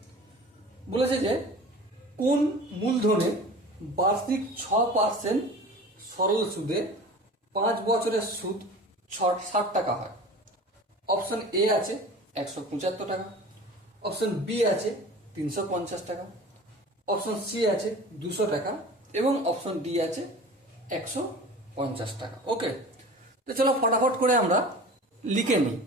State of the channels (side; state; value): both; normal; correlation 0.39